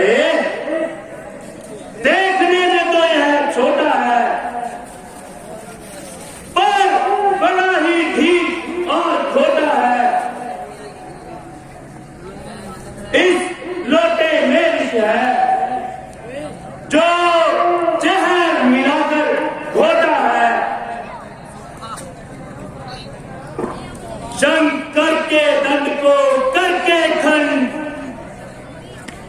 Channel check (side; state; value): both; identical; correlation 1.00